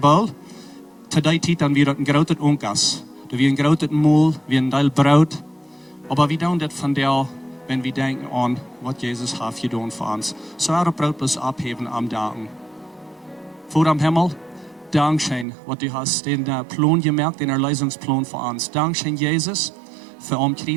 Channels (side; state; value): left; drops out; at 15.5 s